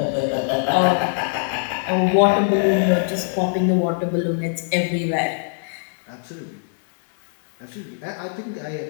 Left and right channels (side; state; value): right; silent; digital silence